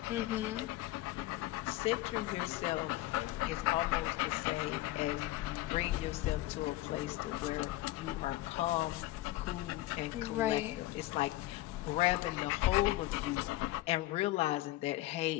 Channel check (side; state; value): right; quieter; 16.9 dB